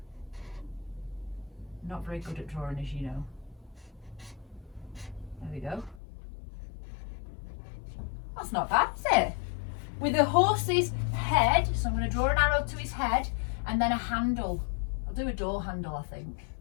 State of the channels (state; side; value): drops out; right; at 6.0 s